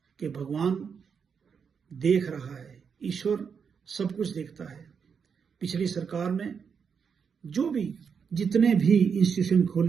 कि भगवान देख रहा है, ईश्वर सब कुछ देखता है। पिछली सरकार में जितने भी इंस्टीट्यूशन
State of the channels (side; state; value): left; quieter; 6.4 dB